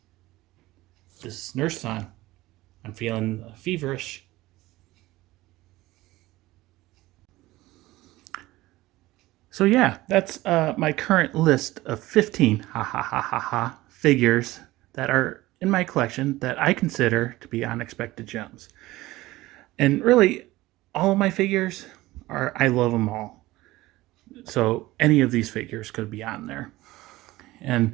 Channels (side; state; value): left; quieter; 18.2 dB